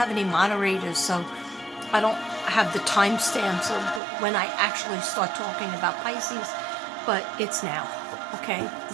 any moderators, so I don't have the timestamps of when I actually start talking about Pisces. But it's now. Okay? The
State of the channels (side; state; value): left; drops out; at 4.0 s